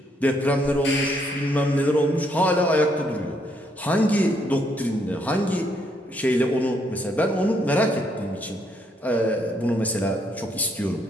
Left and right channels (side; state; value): both; normal; correlation 0.72